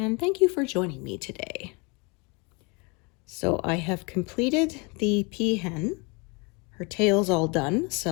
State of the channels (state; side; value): quieter; right; 30.2 dB